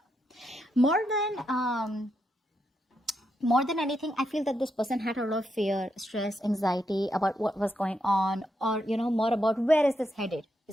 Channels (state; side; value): normal; both; correlation 0.82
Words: More than anything, I feel that this person had a lot of fear, stress, anxiety about what was going on, or more about where is this headed,